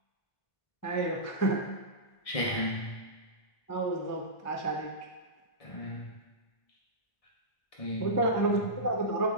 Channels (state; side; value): late; right; 1.6 ms